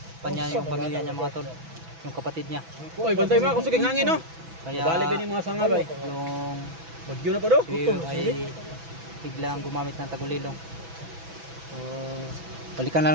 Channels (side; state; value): left; late; 6.1 ms